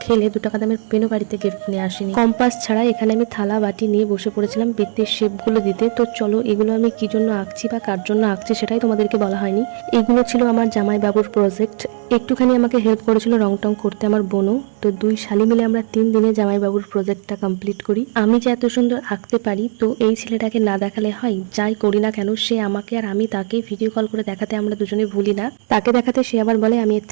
খেলে 2 টাকা দামের পেনও বাড়িতে কিনে আসিনি। কম্পাস ছাড়া এখানে আমি থালা বাটি নিয়ে বসে পড়েছিলাম বৃত্তের শেপগুলো দিতে। তো চলো, এগুলো আমি কি জন্য আঁকছি বা কার জন্য আঁকছি সেটাই তোমাদেরকে বলা হয়নি। এগুলো ছিল আমার জামাইবাবুর প্রজেক্ট। একটুখানি আমাকে হেল্প করেছিল রং টং করতে আমার বোনও। তো 2 শালি মিলে আমরা 3 দিনে জামাইবাবুর প্রজেক্টটা কমপ্লিট করি। আমি যে এত সুন্দর আঁকতে পারি তো এই ছেলেটাকে না দেখালে হয়? যাই করি না কেন সে আমাকে আর আমি তাকে ভিডিও কল করে দেখাতে আমরা দুজনে ভুলি না। তাকে দেখাতে সে আবার বলে আমি এর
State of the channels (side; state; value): left; silent; 57 dB below the other